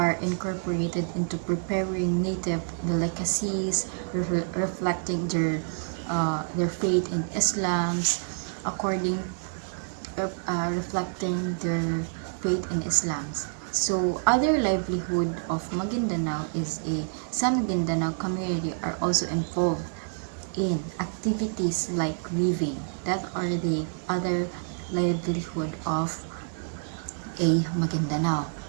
incorporated into preparing native delicacies, reflecting their faith in Islam's according reflecting their faith in Islam's. So other livelihood of Maguindanao is some Maguindanao community are also involved in activities like weaving. That are the other livelihood of a Maguindanao.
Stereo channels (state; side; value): silent; left; digital silence